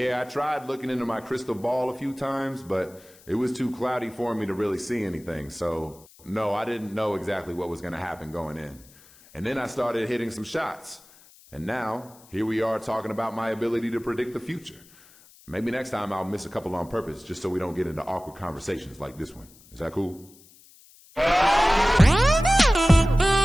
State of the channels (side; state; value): left; noise; hiss, 25 dB below the sound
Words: I tried looking into my crystal ball a few times, but it was too cloudy for me to really see anything. So, no, I didn't know exactly what was going to happen going in. And then I started hitting some shots. And now, here we are talking about my ability to predict the future. Maybe next time I'll miss a couple on purpose just so we don't get into awkward conversations like this one. Is that cool?